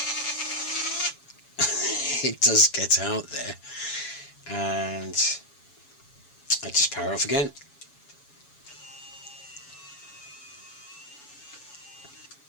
it does get out there, and I just power off again.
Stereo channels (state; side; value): late; right; 7.1 ms